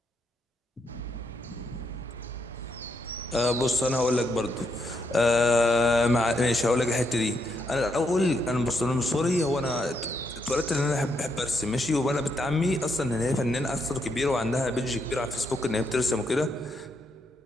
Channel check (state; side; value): normal; both; correlation 0.78